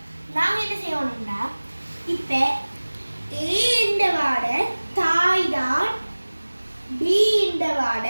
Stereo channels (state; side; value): inverted; both; correlation -1.00